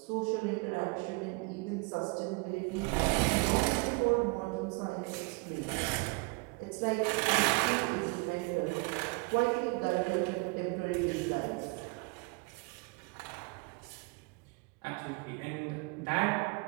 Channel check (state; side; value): quieter; left; 30.1 dB